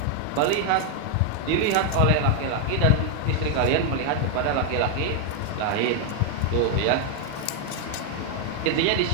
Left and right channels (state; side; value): different; both; correlation 0.00